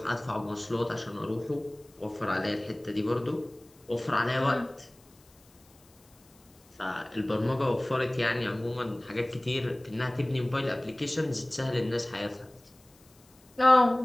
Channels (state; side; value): noise; left; hiss, 29 dB below the sound